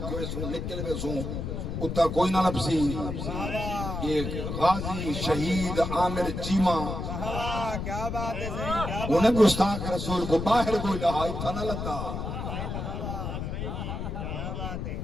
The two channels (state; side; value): noise; left; rumble, 4 dB below the sound